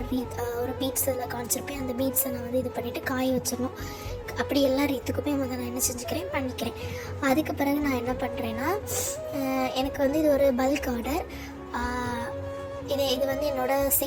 ஒரு பீட்ஸ் இதில் காமிச்சிருப்பேன். அந்த பீட்ஸை நான் இது பண்ணிவிட்டு காய வச்சிடணும். அப்படி எல்லா ரீத்துக்குமே நான் என்ன செஞ்சுக்கிறேன், பண்ணிக்கிறேன். அதுக்கு பிறகு நான் என்ன பண்ணுறேன்னா, எனக்கு இது ஒரு பல்க் ஆர்டர். இது என்னோடய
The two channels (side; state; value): both; identical; correlation 1.00